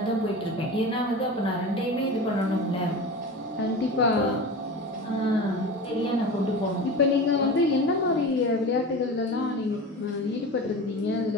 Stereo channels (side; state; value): both; normal; correlation 0.30